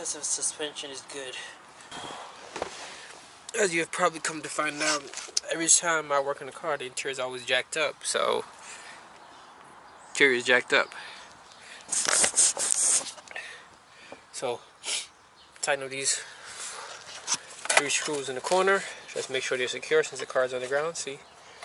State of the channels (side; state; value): both; identical; correlation 1.00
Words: of suspension is good. As you have probably come to find out, every time I work in a car, the interior is always jacked up. So, interior is jacked up. So, tighten up these 3 screws in the corner. Just make sure they're secure since the car is on the ground. See,